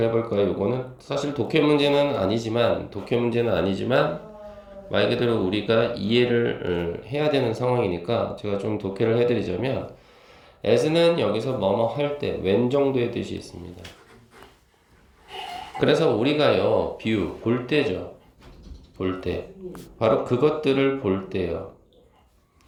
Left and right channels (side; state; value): both; identical; correlation 1.00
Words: 해볼까요? 이거는 사실 독해 문제는 아니지만 말 그대로 우리가 이해를 해야 되는 상황이니까 제가 좀 독해를 해드리자면 as는 여기서 뭐뭐 할 때 웬 정도의 뜻이 있습니다. 그래서 우리가요 view 볼 때죠. 볼 때 바로 그것들을 볼 때요.